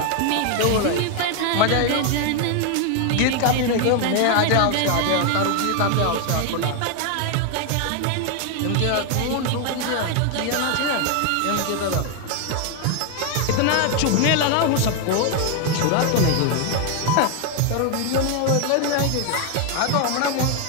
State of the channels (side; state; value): both; different; correlation 0.01